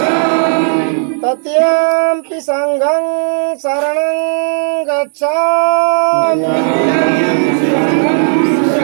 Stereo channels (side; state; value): left; silent; digital silence